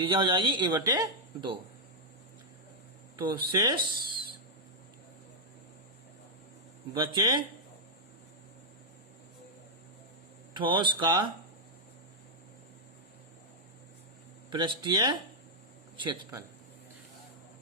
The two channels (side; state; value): both; normal; correlation -0.04